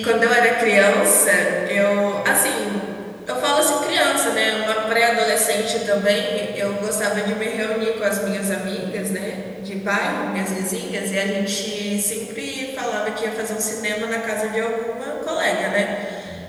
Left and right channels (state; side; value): identical; both; correlation 1.00